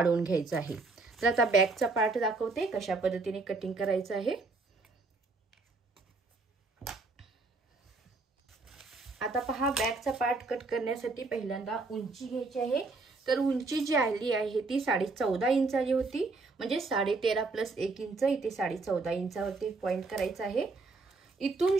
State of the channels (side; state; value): left; quieter; 3.7 dB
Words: घ्यायचं आहे। तर आता बॅकचा पार्ट दाखवते कशा पद्धतीने कटिंग करायचं आहे। आता पहा बॅकचा पार्ट कट करण्यासाठी पहिल्यांदा उंची घ्यायची आहे। तर उंची जी आली आहे ती 14.5 इंच आली होती, म्हणजे 13.5 प्लस 1 इंच, इथे 14.5 इंचावरती पॉइंट करायचा आहे। इथून